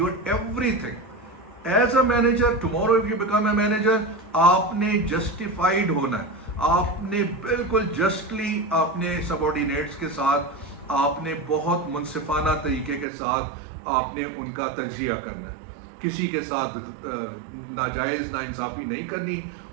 everything as a manager, tomorrow if you become a manager, आपने जस्टिफाइड होना है, आपने बिल्कुल जस्टली अपने सबऑर्डिनेट्स के साथ, आपने बहुत मुनसिफाना तरीके के साथ आपने उनका तज्जिया करना है, किसी के साथ नाजायज़ नाइंसाफ़ी नहीं करनी,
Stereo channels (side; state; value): left; drops out; at 13.1 s